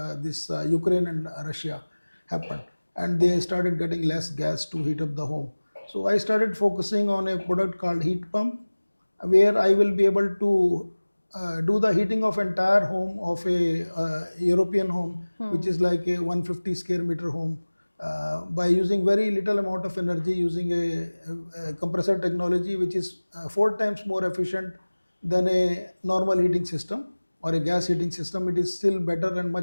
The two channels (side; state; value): both; inverted; correlation -1.00